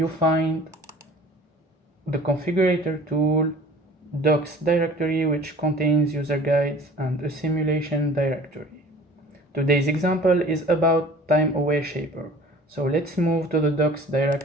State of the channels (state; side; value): normal; both; correlation 0.47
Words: find the configurator tool, docs directory, which contains user guides, and a simulation directory. Today's example is about Time Aware Shaper. So let's move to the docs